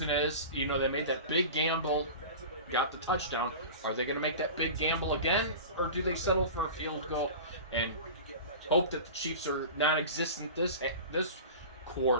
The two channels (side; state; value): both; inverted; correlation -0.34